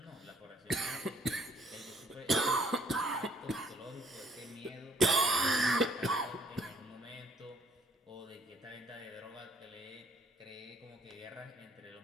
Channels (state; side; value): normal; both; correlation 0.64